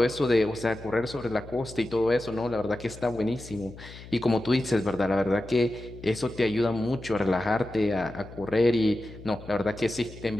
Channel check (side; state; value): left; noise; hum, 16 dB below the sound